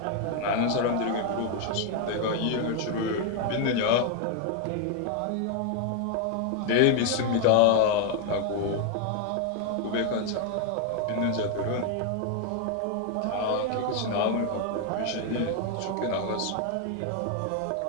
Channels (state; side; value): different; both; correlation 0.01